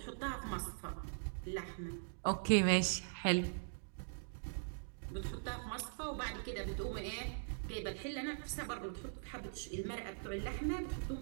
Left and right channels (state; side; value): silent; left; digital silence